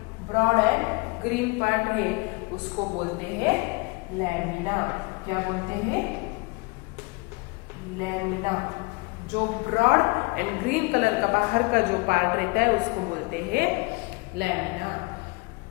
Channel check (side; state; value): right; quieter; 27.3 dB